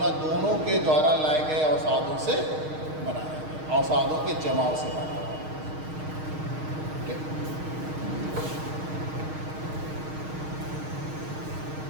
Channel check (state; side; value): late; left; 6.4 ms